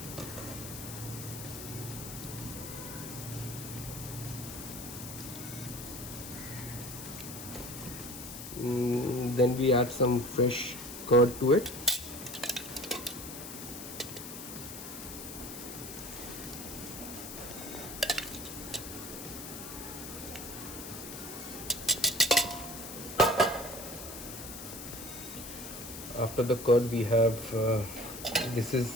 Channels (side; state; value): left; noise; hiss, 10 dB below the sound